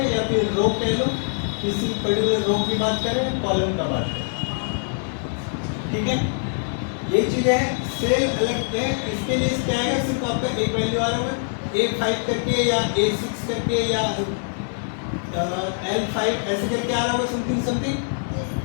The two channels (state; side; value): silent; right; 63 dB below the other